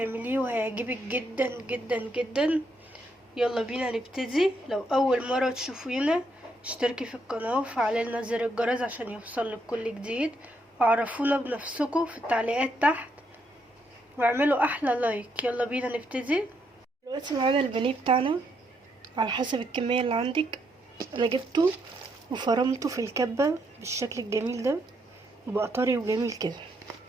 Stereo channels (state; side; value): normal; both; correlation 0.76